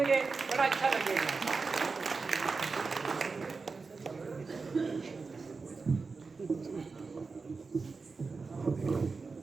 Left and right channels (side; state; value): left; quieter; 4.4 dB